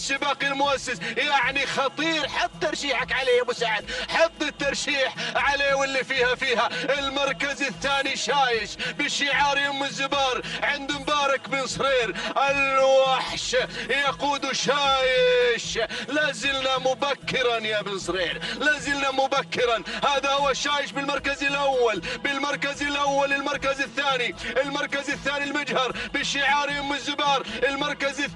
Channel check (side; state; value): both; identical; correlation 1.00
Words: المؤسس. يعني خطير، حط ترشيحك عليه يا ابو سعد، حط الترشيح عليه واللي فيها. المركز الثاني شايش بشعار يم الزبار عند مبارك بن صهير، الوحش يقود شايش. لازلنا مبكرا يا بن صهير، لازلنا مبكرا. هذا هو شايش بالمركز الأول. المركز الثاني المجهر بشعار يم الزبار. المركز